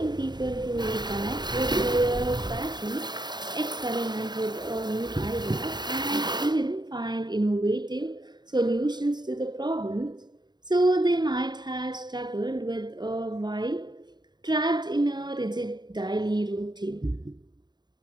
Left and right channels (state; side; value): late; left; 0.21 ms